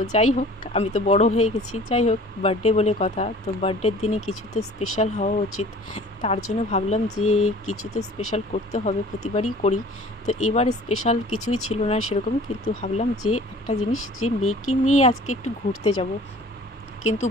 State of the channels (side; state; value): both; normal; correlation 0.47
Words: যাই হোক, আমি তো বড় হয়ে গেছি, যাই হোক বার্থডে বলে কথা। তো বার্থডের দিনে কিছু তো স্পেশাল হওয়া উচিত। তার জন্য ভাবলাম যে কিছু তো স্পেশাল করতে হবে, প্রতিবারই করি। তো এবার স্পেশাল কিছুই ছিল না সেরকম, কিন্তু ভাবলাম যে একটা জিনিস, যে মেয়েকে নিয়ে আজকে একটু ঘুরতে যাব। কিন্তু